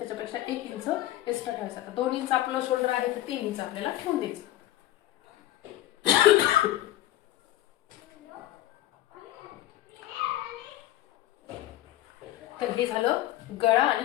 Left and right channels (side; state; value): right; quieter; 14.6 dB